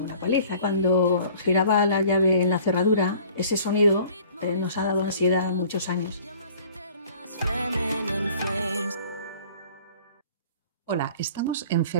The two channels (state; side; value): inverted; both; correlation -0.51